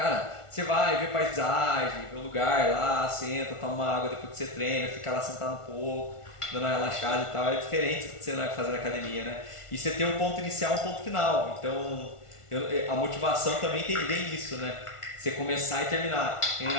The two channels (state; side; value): late; right; 1.4 ms